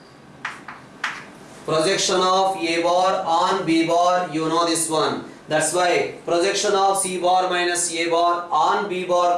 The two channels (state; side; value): identical; both; correlation 1.00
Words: Projection of A bar on B bar, you know this one. That's why projection of C bar minus A bar on B bar